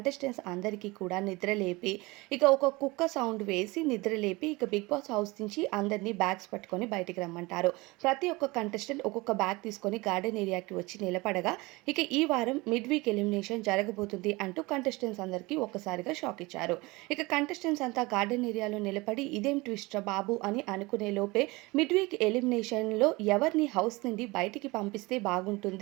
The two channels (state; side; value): quieter; left; 23.2 dB